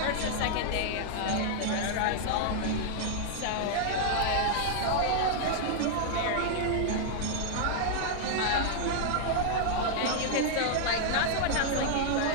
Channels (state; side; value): different; both; correlation -0.01